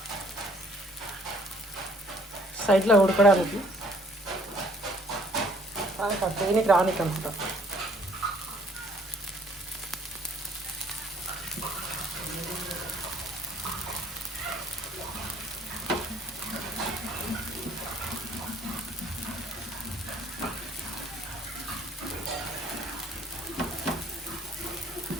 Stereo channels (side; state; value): both; normal; correlation 0.60